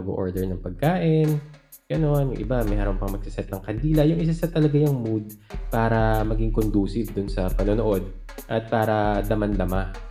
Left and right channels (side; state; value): both; identical; correlation 1.00